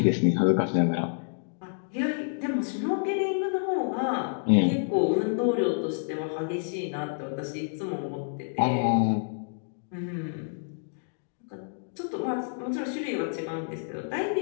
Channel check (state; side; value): silent; right; digital silence